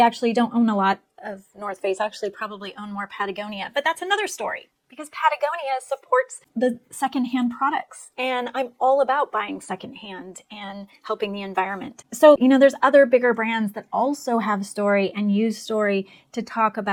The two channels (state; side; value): identical; both; correlation 1.00